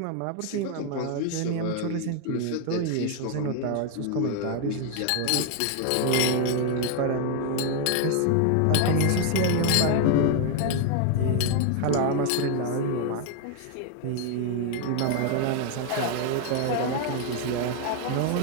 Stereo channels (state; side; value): different; both; correlation 0.00